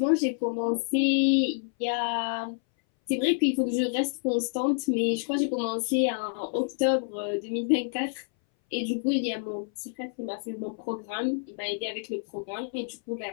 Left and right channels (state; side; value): silent; right; 59 dB below the other